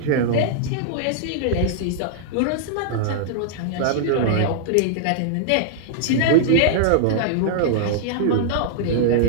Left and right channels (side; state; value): both; different; correlation -0.01